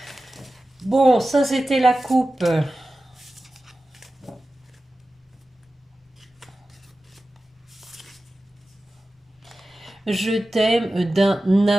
Bon, ça c'était la coupe. Je t'aime d'un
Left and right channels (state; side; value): normal; both; correlation 0.95